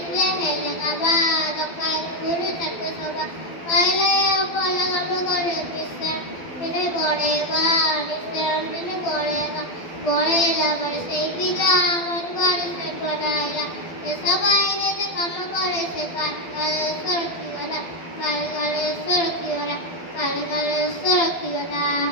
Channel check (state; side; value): late; right; 12 ms